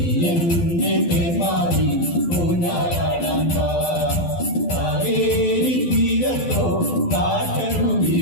എന്റെ തേന്മാരി ഊഞ്ഞാലാടാൻ വാ. കാവേരി തീരത്തോ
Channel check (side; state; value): right; late; 12 ms